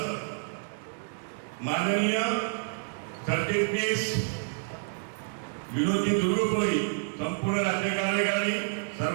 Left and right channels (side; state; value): left; silent; digital silence